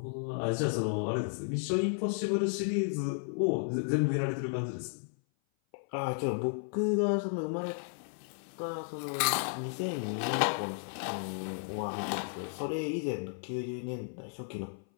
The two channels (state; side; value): silent; right; 55 dB below the other